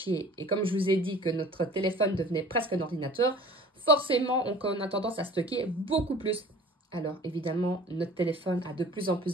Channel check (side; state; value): both; normal; correlation 0.45